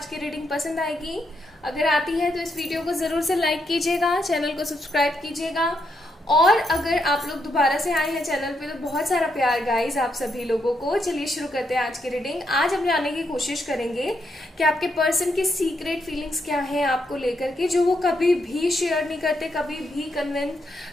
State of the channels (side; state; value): both; normal; correlation 0.79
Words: की रीडिंग पसंद आएगी। अगर आती है तो इस वीडियो को ज़रूर से लाइक कीजिएगा, चैनल को सब्सक्राइब कीजिएगा। और अगर आप लोग दोबारा से आए हैं चैनल पे तो बहुत सारा प्यार गाइस आप सभी लोगों को। चलिए शुरू करते हैं आज की रीडिंग। आज हम जानने की कोशिश करेंगे कि आपके पर्सन की सीक्रेट फीलिंग्स क्या हैं आपको लेकर के, जो वो कभी भी शेयर नहीं करते, कभी भी